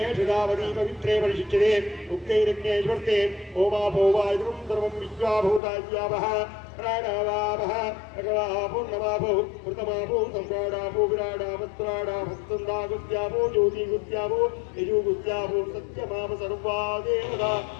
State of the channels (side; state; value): right; drops out; at 5.6 s